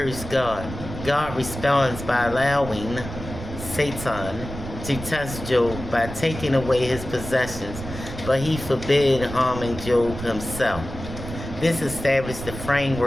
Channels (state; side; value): noise; right; rumble, 10 dB below the sound